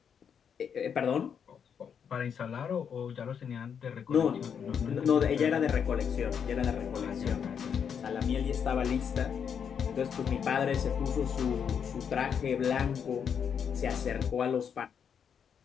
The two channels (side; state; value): right; quieter; 7.4 dB